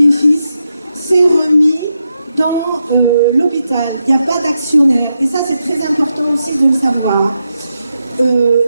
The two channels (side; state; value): both; inverted; correlation -0.86